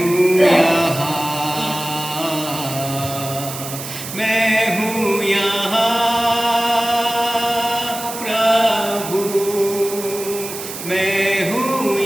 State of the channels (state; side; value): noise; right; hiss, 9 dB below the sound